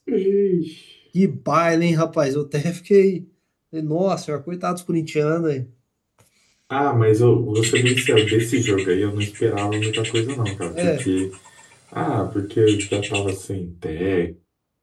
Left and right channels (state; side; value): identical; both; correlation 1.00